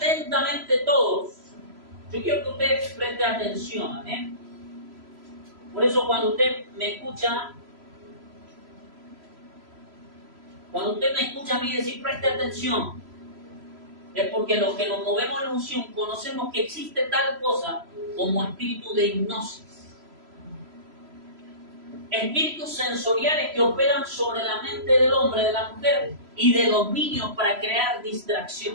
todos. Yo quiero que usted preste atención, Por eso cuando usted me escucha, a mí decir preste atención, es porque los que nos movemos en unción conocemos que existe tal cosa como espíritu de hipnosis. Espíritus sensoriales que operan sobre la mente del hombre, de la mujer y de los niños para crear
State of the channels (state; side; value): late; left; 3.0 ms